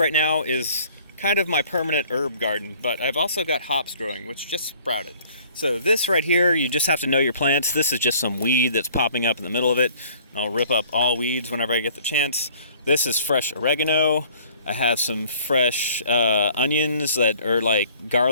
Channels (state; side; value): inverted; both; correlation -0.54